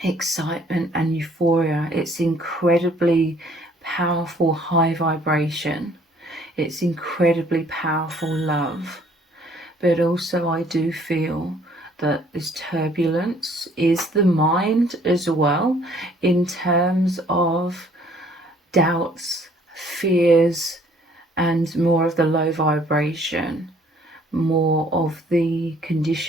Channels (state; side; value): normal; both; correlation 0.60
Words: excitement and euphoria. It's incredibly powerful high vibration. It's incredibly powerful love. But also I do feel that this turbulence is the mind as well, in terms of doubts, fears, and more of the low vibration, more of the